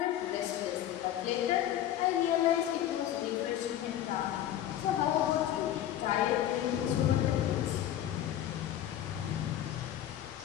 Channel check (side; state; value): right; quieter; 11.8 dB